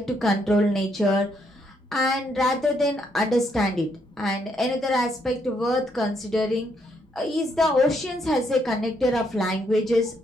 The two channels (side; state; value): both; normal; correlation 0.74